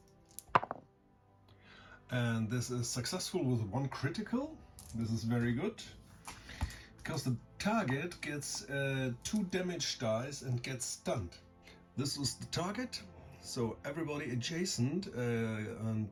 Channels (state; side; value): identical; both; correlation 1.00